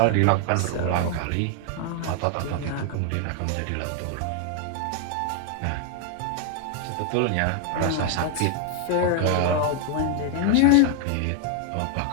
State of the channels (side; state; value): both; different; correlation 0.00